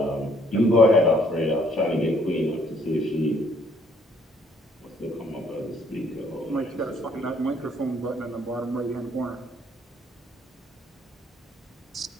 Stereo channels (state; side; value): normal; both; correlation 0.64